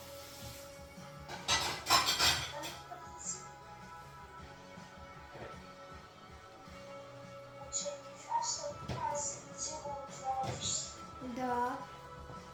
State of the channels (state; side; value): identical; both; correlation 1.00